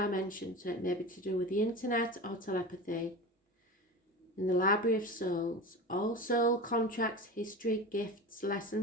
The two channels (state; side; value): normal; both; correlation 0.30